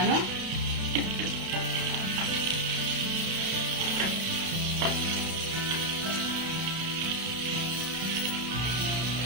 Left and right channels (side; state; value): left; late; 32 ms